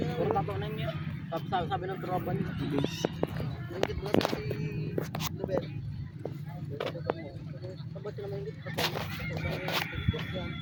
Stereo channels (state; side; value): identical; both; correlation 1.00